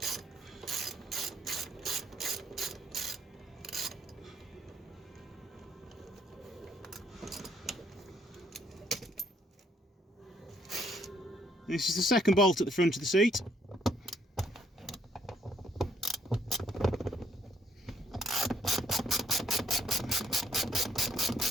This is the second bolt at the front of the seat.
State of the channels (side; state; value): both; normal; correlation 0.69